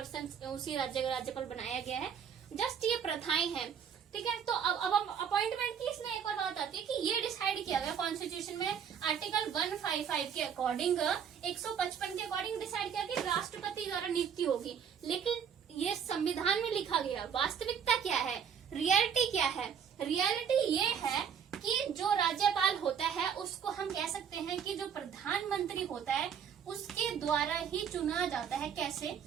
उसी राज्य का राज्यपाल बनाया गया है। जस्ट ये प्रथाएं हैं। ठीक है। तो अब अपॉइंटमेंट की इसमें एक और बात आती है कि ये डिसाइड किया गया कॉन्स्टिट्यूशन में आर्टिकल 155 के अकॉर्डिंग, 155 के अकॉर्डिंग डिसाइड किया कि राष्ट्रपति द्वारा नियुक्ति होगी। लेकिन ये संविधान में लिखा गया, वास्तविकता क्या है, रियलिटी क्या है? रियलिटी ये है कि जो राज्यपाल होता है उसको हम कह सकते हैं कि जो प्रधानमंत्री होता है उसके द्वारा ही चुना जाता है। कैसे?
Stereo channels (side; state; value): left; quieter; 7.6 dB